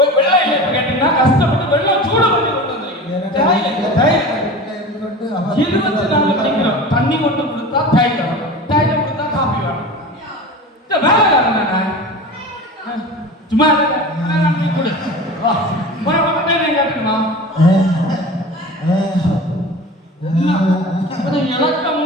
இல்லை கேட்டீங்கன்னா கஷ்டப்பட்டு வெள்ளம் சூட பண்ணி கொண்டு வந்திருக்கீங்க 24 படிக்கிறோம் தண்ணி கொண்டு கொடுத்தா தைலம் கொடுத்தா காபி வேணும் இந்த வேலை காரணம் சும்மா கொடு கேட்டுமா இலக்கம்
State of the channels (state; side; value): normal; both; correlation 0.34